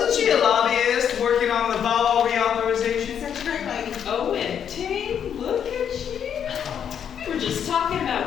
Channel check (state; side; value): quieter; right; 8.4 dB